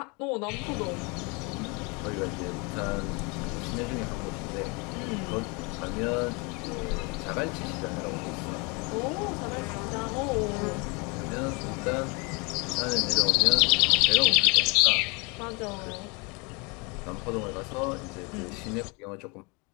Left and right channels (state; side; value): quieter; right; 29.6 dB